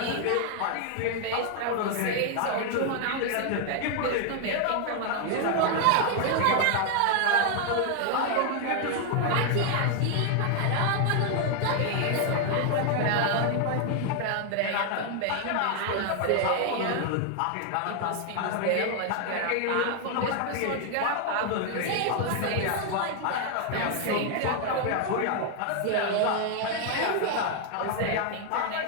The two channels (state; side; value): different; both; correlation 0.00